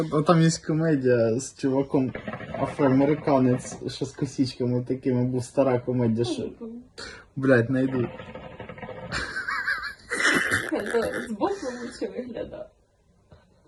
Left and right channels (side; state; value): both; identical; correlation 1.00